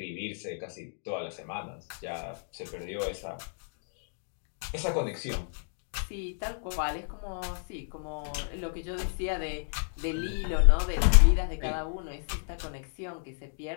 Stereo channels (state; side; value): silent; right; digital silence